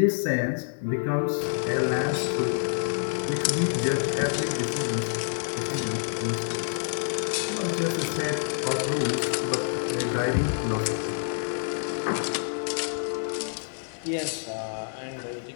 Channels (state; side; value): silent; right; digital silence